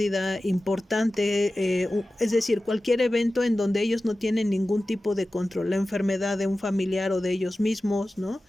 importante, es decir, cualquier evento en donde ellos no tienen ningún tipo de control, la enfermedad de un familiar o de ellos mismos, ¿no?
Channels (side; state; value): both; normal; correlation 0.95